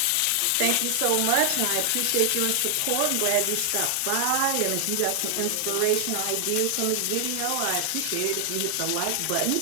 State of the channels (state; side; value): different; both; correlation 0.00